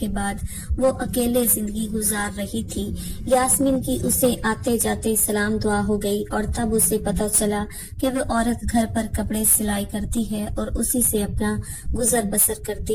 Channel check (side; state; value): both; identical; correlation 1.00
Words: بعد وہ اکیلے زندگی گزار رہی تھی۔ یاسمین کی اسے آتے جاتے سلام دعا ہو گئی اور تب اسے پتہ چلا کہ وہ عورت گھر پر کپڑے سلائی کرتی ہے اور اسی سے اپنا گزر بسر